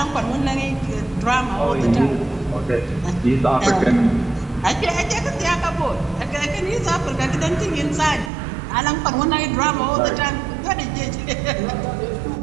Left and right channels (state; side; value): drops out; left; at 8.3 s